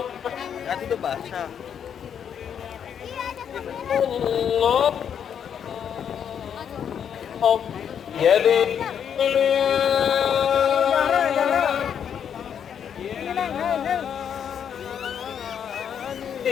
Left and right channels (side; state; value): right; quieter; 8.3 dB